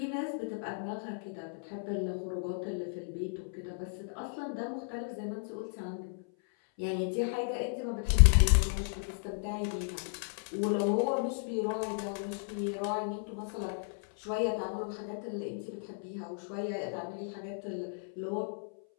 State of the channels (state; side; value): silent; right; 55 dB below the other